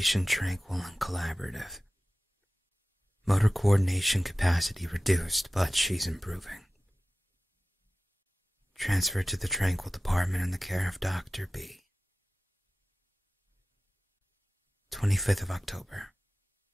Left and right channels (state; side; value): normal; both; correlation 0.95